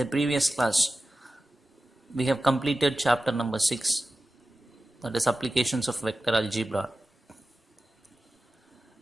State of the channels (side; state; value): both; normal; correlation 0.95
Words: previous class, we have completed chapter number 6, that is applications of vector algebra.